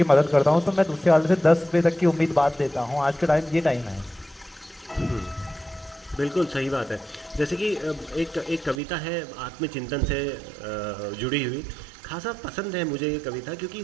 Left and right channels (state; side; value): drops out; left; at 8.8 s